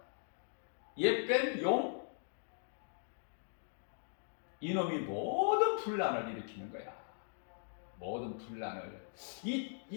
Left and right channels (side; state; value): right; silent; digital silence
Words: 옛뱀 용, 이놈이 모든 분란을 일으키는 거야. 모든 분란을.